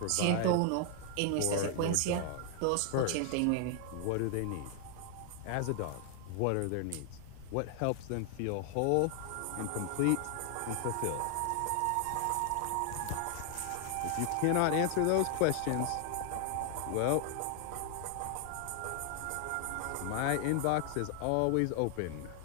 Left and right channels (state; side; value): different; both; correlation 0.00